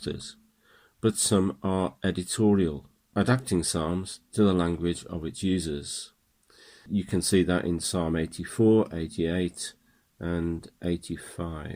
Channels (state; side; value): identical; both; correlation 1.00